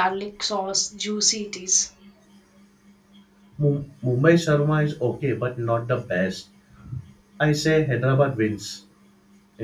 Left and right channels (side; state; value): both; identical; correlation 1.00